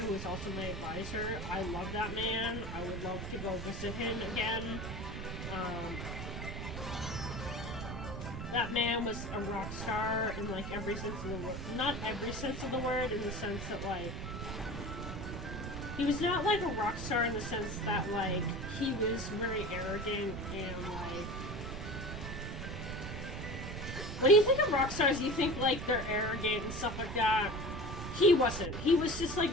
was also my advisor. I love that man. I would love to go visit him again. That man was a rock star in, like, every sense of the word. Not every sense of the word, in the sense that, like... He was not, like, a rock star in the sense that, like, he was very arrogant and, like... When you think of rock stars, you think, like, they're arrogant and stuff like that. He wasn't. He was just, like,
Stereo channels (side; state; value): right; noise; rumble, 6 dB below the sound